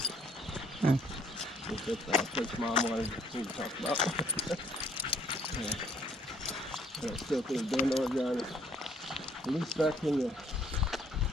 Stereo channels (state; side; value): normal; both; correlation 0.63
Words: Hmm. That's the place Mom wanted me to talk about. Yeah. And I still think Bend, Oregon, at least back in the